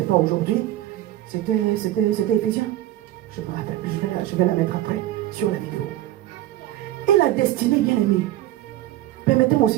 pas aujourd'hui. C'était Éphésiens. Je me rappelle, je vais la mettre après sur la vidéo. Et la destinée, bien aimée. Permettez-moi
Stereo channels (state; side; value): quieter; left; 14.2 dB